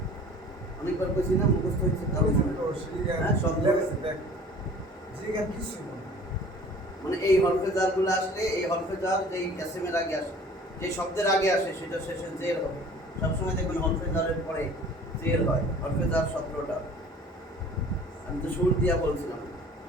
অনেকবার কইছি না মুখস্থ হয়েছে কারণ হ্যাঁ, শব্দ। মানে এই হরফে জারগুলো আসলে এই হরফে জার যেই এসএমের আগে আসে, যে শব্দের আগে আসে সেটা শেষে জের হবে। সবসময় দেখবেন হরফে জারের পরে জের হয়। হরফে জার 17টা। আমি তো শুরু দিয়া বলছিলাম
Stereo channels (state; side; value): normal; both; correlation 0.47